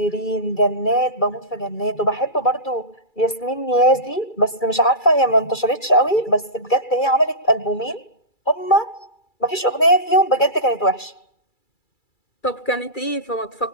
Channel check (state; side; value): late; right; 2.3 ms